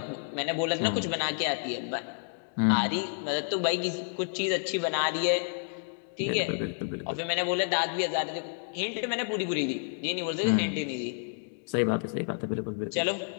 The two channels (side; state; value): right; silent; digital silence